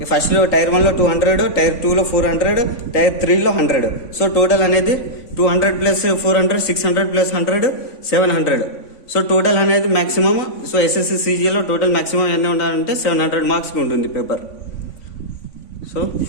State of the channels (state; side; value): late; right; 3.5 ms